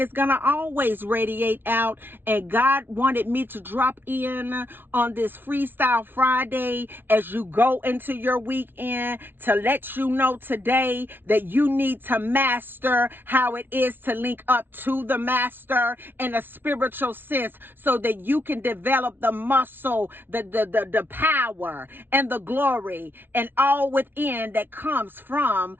it's going to always radiate out. And God wanted me to drop in on this Freestyle Friday as you go into your weekend to let you know today that you need to master how it is to link up to the master in a spiritual sense, so that you can develop the muscle, the power and the glory and all within that comes from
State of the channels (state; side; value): late; left; 0.10 ms